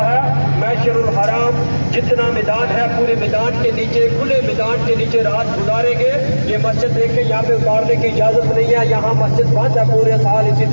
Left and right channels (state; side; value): inverted; both; correlation -1.00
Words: ہے. مشعر الحرام جتنا میدان ہے پورے میدان کے نیچے, کھلے میدان کے نیچے رات گزاریں گے. یہ مسجد دیکھیں یہاں پہ اتارنے کی اجازت نہیں ہے, یہاں مسجد بند ہے پورے سال. اسی